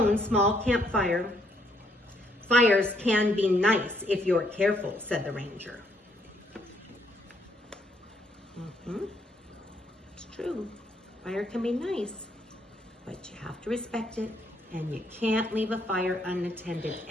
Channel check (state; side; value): normal; both; correlation 0.71